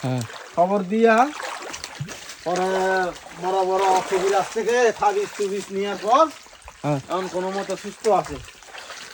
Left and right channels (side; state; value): both; identical; correlation 1.00